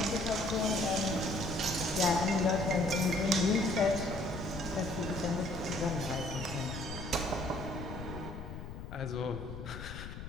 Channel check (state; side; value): noise; left; rumble, 9 dB below the sound